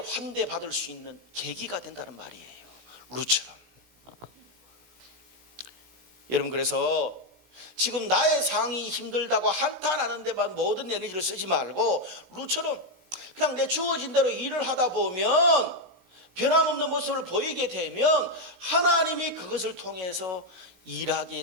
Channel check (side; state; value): left; late; 16 ms